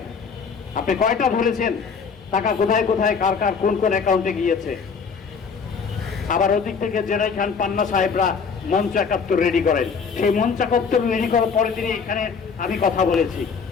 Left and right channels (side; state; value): right; quieter; 5.6 dB